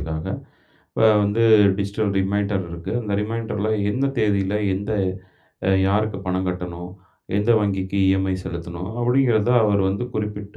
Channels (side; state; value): both; identical; correlation 1.00